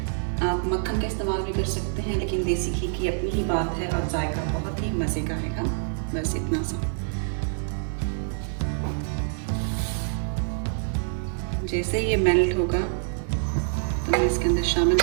आप मक्खन का इस्तेमाल भी कर सकते हैं लेकिन देसी घी की अपनी ही बात है और जायका बहुत ही मज़े का है. बस इतना सा. जैसे ये मेल्ट होगा तो मैं इसके अंदर शामिल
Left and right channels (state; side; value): silent; left; digital silence